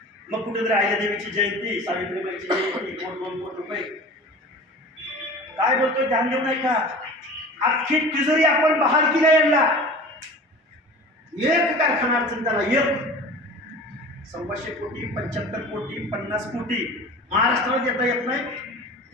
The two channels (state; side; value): normal; both; correlation 0.39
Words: मग कुठेतरी अहिल्यादेवीची जयंती, सावित्रीबाईची जयंती, 2 कोटी रुपये. काय बोलतोय? ध्यान देऊ नाही का? अख्खी तिजोरी आपण बहाल केल्या यांना. एक कारखाना अडचण त्याला, एक 100 कोटी, 75 कोटी, 50 कोटी महाराष्ट्राला देता येत नाही.